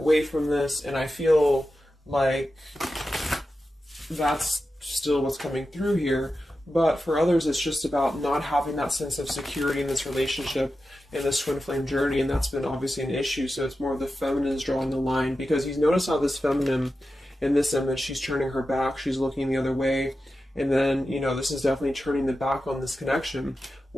from this. And I feel like that's still what's coming through here. But for others, it's just about not having that sense of security in this relationship, in this Twin Flame journey, and that's been obviously an issue. So it's more of the feminine is drawing the line, because you notice how this feminine in this image, she's turning her back, she's looking the other way, and then, this is definitely turning the back on this connection,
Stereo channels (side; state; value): both; normal; correlation 0.92